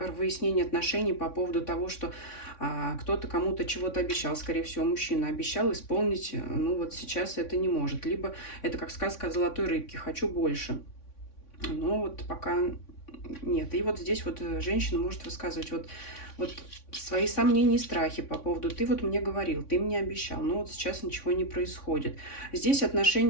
выяснение отношений по поводу того, что кто-то кому-то чего-то обещал, скорее всего, мужчина обещал исполнить, ну вот сейчас это не может. Либо это как сказка о золотой рыбке, хочу больше. Но вот пока нет. И вот здесь вот женщина может высказывать вот свои сомнения и страхи по поводу «ты вот мне говорил, ты мне обещал, но вот сейчас ничего не происходит». Здесь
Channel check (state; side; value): late; right; 3.6 ms